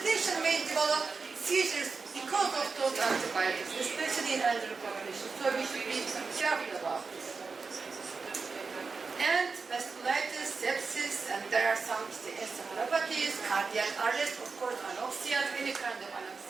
patient may develop seizures because of those antibiotics, especially in elderly population. So we should be careful about this. And vasculitis, sepsis, and there are some encephalopathies, cardiac arrest, of course, anoxia, any kind of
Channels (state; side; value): quieter; left; 4.6 dB